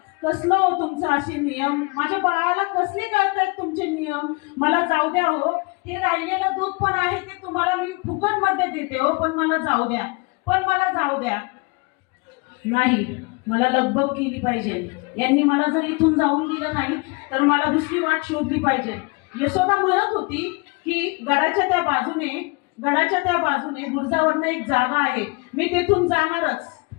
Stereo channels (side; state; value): right; quieter; 28.6 dB